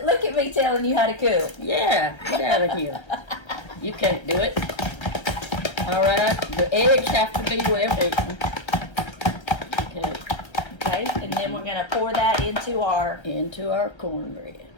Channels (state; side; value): late; right; 1.3 ms